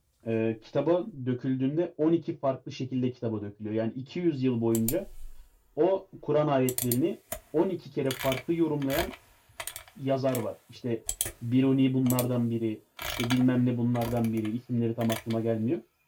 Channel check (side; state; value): both; identical; correlation 1.00